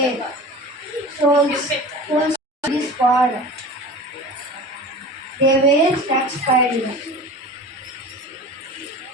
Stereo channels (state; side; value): normal; both; correlation 0.35